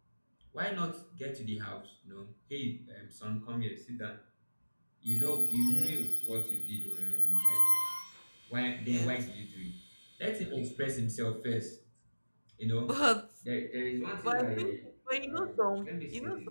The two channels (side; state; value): both; inverted; correlation -1.00